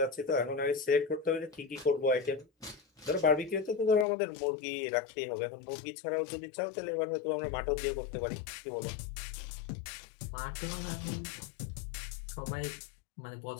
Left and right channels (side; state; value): right; drops out; at 4.0 s